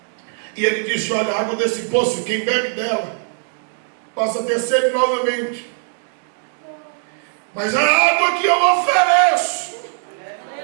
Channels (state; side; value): silent; left; 66 dB below the other